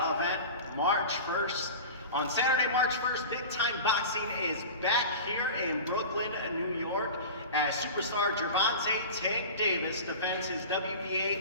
event March 1st. On Saturday, March 1st, Big Time Boxing is back here in Brooklyn, New York, as superstar Gervonta "Tank" Davis defends his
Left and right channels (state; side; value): inverted; both; correlation -0.33